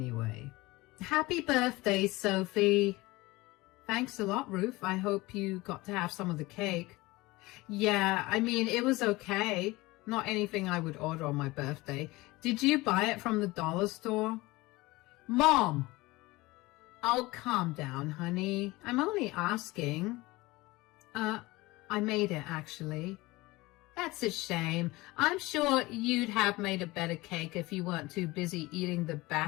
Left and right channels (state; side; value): quieter; right; 20.9 dB